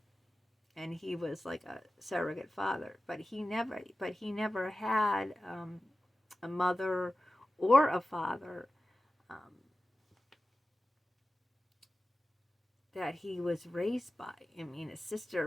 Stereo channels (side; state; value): both; normal; correlation 0.95